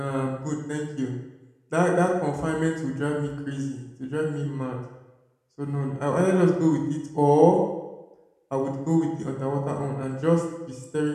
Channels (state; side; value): identical; both; correlation 1.00